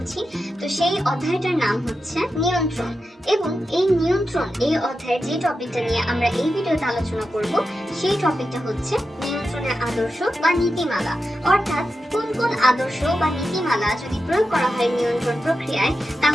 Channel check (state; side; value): normal; both; correlation 0.90